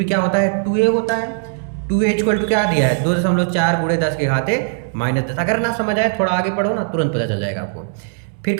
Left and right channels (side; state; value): left; silent; digital silence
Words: क्या होता है 2a होता है। 2a इक्वल टू क्या दिया है 2.4 गुणे 10⁻⁻10। अगर ना समझ आए थोड़ा आगे पढ़ो ना, तुरंत पता चल जाएगा आपको। फिर